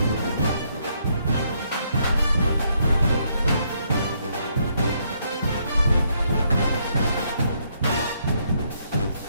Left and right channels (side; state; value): both; inverted; correlation -0.73